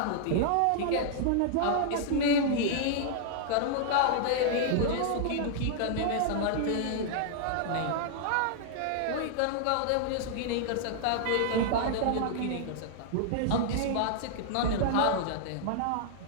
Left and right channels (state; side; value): different; both; correlation -0.01